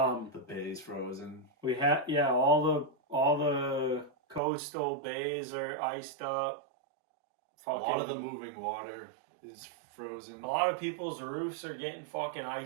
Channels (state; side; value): drops out; left; at 4.4 s